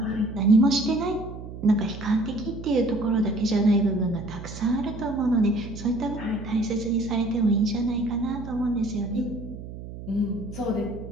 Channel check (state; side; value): noise; right; hum, 11 dB below the sound